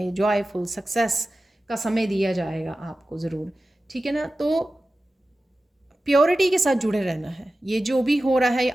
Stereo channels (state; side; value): normal; both; correlation 0.95